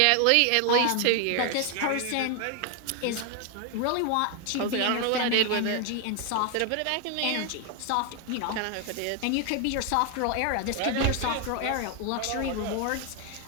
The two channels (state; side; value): different; both; correlation 0.01